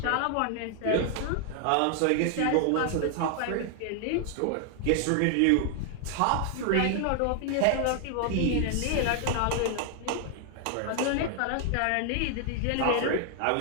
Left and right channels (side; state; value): both; different; correlation 0.00